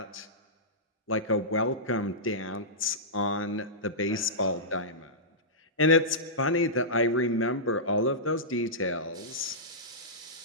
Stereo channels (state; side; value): normal; both; correlation -0.16